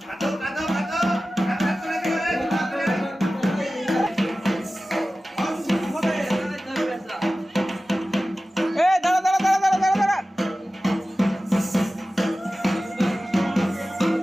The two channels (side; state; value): both; normal; correlation 0.95